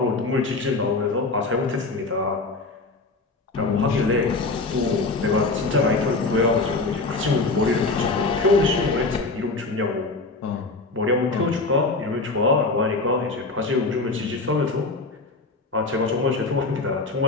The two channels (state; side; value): quieter; right; 3.5 dB